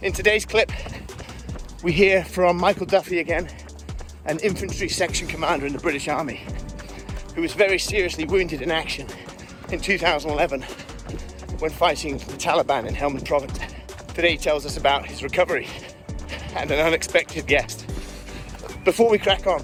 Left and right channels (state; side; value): identical; both; correlation 1.00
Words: In today's clip, we hear from Michael Duffy again, an infantry section commander in the British Army, who was very seriously wounded in action in 2011 when fighting the Taliban in Helmand Province. Today he tells us about his recovery and an unexpected guest. Before we crack on,